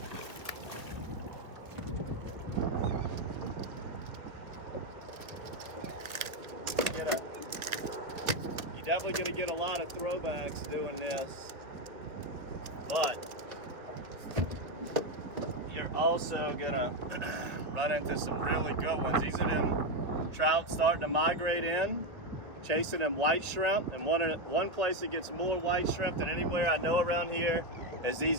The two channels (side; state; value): left; late; 1.5 ms